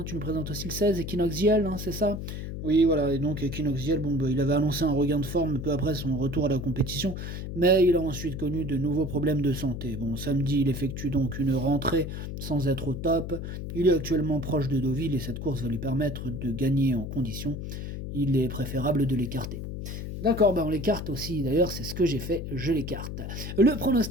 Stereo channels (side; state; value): left; noise; hum, 6 dB below the sound